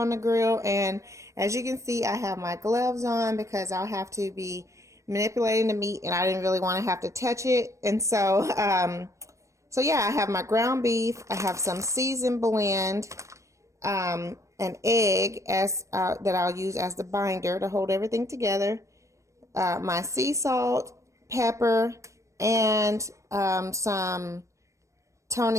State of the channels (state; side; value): late; left; 0.15 ms